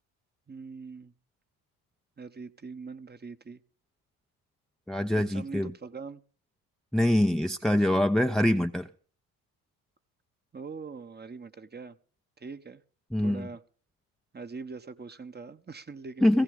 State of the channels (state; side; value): normal; both; correlation 0.95